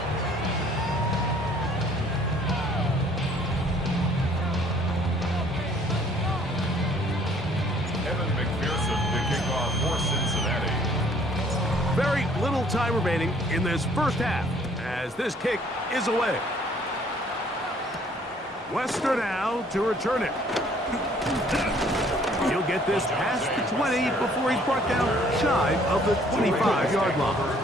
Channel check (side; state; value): both; normal; correlation 0.59